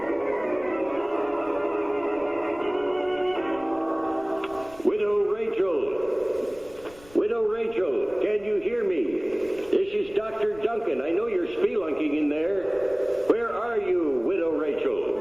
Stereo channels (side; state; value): left; noise; rumble, 23 dB below the sound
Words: Widow Rachel, can you hear me? This is Dr. Duncan. I know you're spelunking in there. Where are you, Widow Rachel?